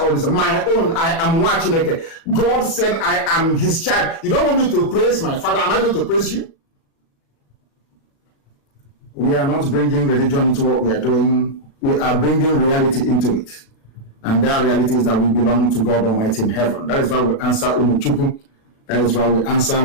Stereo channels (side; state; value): right; late; 36 ms